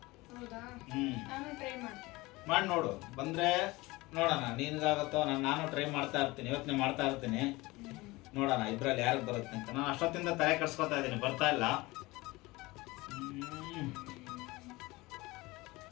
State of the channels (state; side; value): quieter; right; 21.6 dB